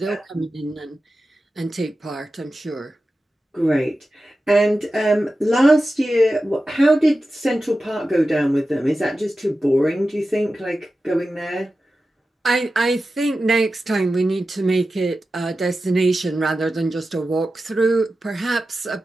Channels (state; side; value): normal; both; correlation 0.93